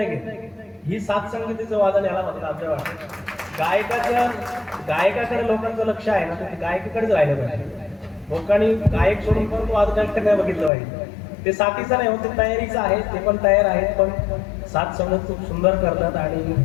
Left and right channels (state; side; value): drops out; right; at 10.7 s